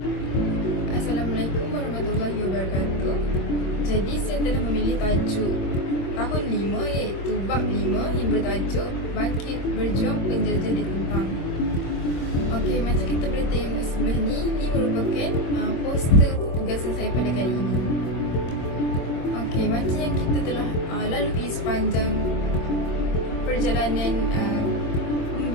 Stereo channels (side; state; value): right; late; 24 ms